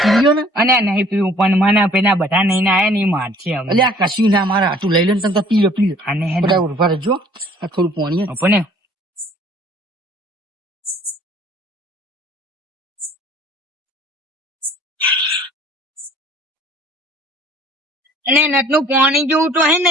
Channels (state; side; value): normal; both; correlation 0.54